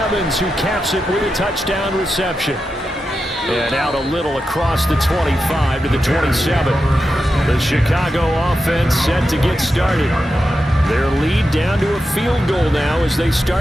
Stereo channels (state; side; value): normal; both; correlation 0.89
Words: who caps it with a touchdown reception. And out a little across the 25 to the 27. The Chicago offense set to get started. Their lead down to a field goal now as they